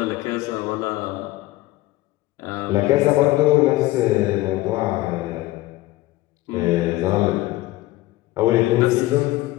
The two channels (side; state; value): right; quieter; 17.6 dB